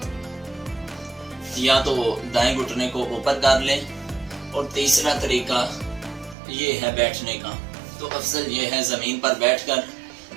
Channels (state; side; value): drops out; left; at 6.4 s